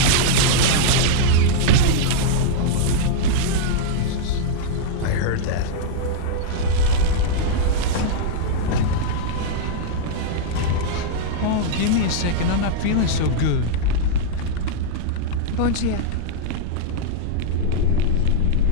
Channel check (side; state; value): both; different; correlation -0.02